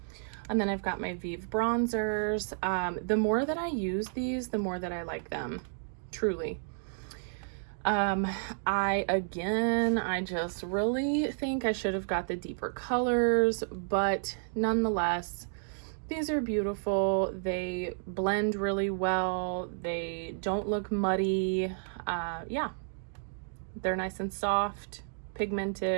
And then I've got my Vive bronzers. The more that I use these, the more that I like them, truly. I just really think I should have got the deeper colors, but nonetheless, these are beautiful. They blend really well. They don't look muddy. Yeah, they're nice and soft,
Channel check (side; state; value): left; silent; digital silence